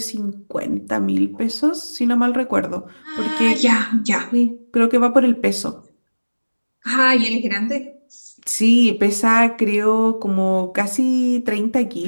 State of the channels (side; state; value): both; inverted; correlation -1.00